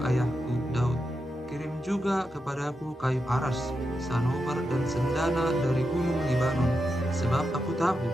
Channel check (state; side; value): normal; both; correlation 0.87